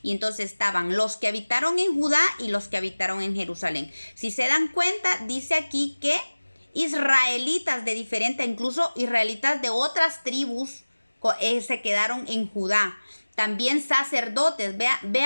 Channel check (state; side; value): inverted; both; correlation -1.00